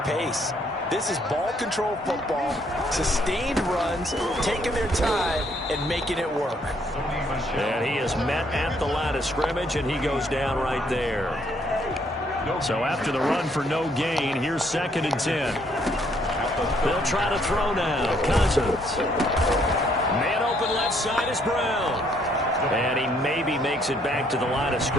pace. This is ball control football, sustained runs, taking their time, and making it work. And he is met at the line of scrimmage, and he goes down right there. So after the run for no gain, here's 2nd and 10. They'll try to throw now. Cousins. Man open left side is Brown. And he maybe makes it back to the line of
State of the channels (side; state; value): both; normal; correlation 0.68